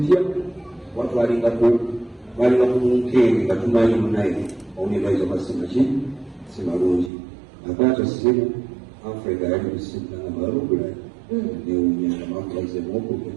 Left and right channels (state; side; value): drops out; left; at 7.1 s